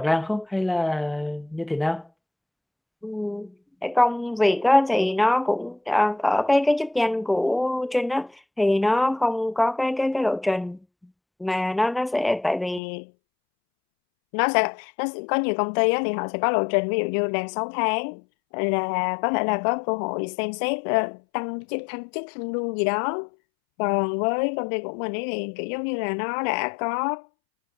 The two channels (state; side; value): drops out; right; at 12.8 s